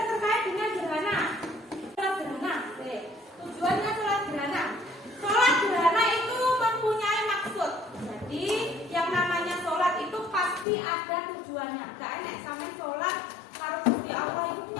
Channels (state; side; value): drops out; right; at 10.7 s